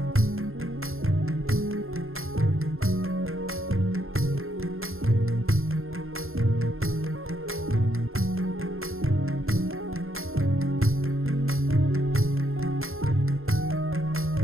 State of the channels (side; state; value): left; late; 0.61 ms